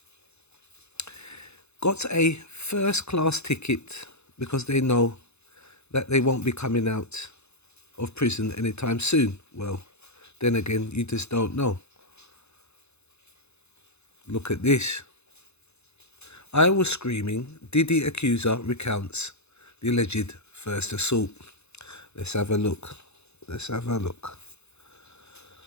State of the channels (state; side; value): late; right; 0.81 ms